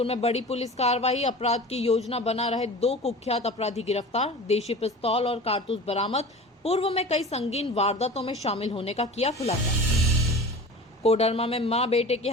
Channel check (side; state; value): both; normal; correlation 0.37